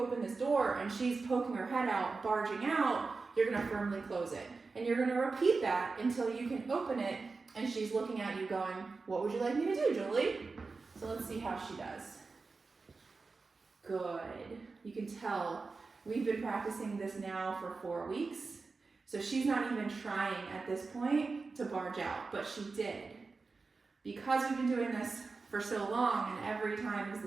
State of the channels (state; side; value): quieter; left; 4.2 dB